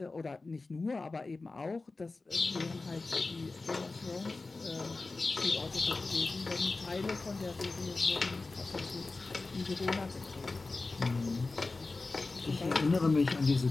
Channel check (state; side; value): quieter; right; 3.6 dB